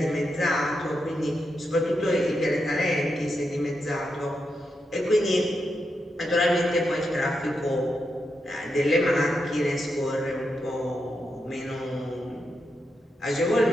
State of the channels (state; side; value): normal; both; correlation 0.85